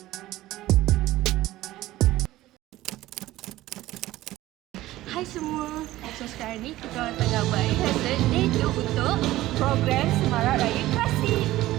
Hai semua. So sekarang ni kita orang tengah buat rehearsal debut untuk program Semarak Raya Klasik.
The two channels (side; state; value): left; quieter; 16.2 dB